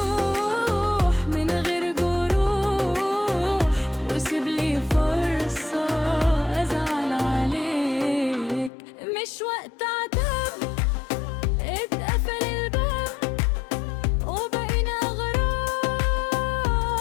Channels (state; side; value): drops out; right; at 8.7 s